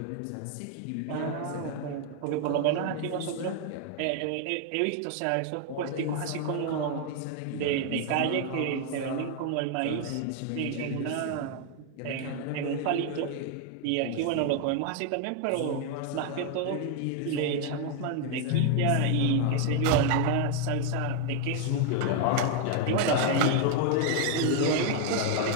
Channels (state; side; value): different; both; correlation 0.00